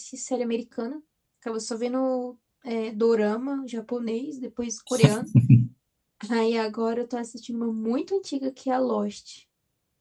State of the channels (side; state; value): both; identical; correlation 1.00